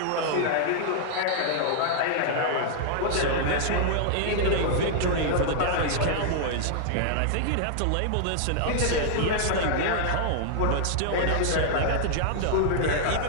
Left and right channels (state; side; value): different; both; correlation -0.01